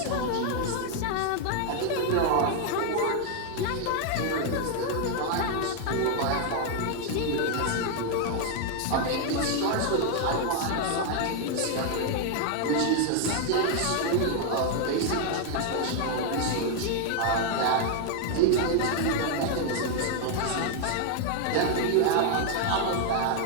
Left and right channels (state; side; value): different; both; correlation 0.00